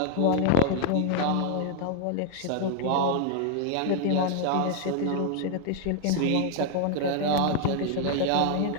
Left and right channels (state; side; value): different; both; correlation 0.00